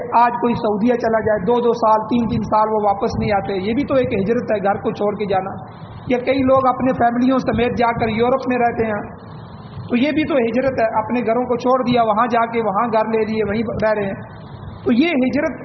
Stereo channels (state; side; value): identical; both; correlation 1.00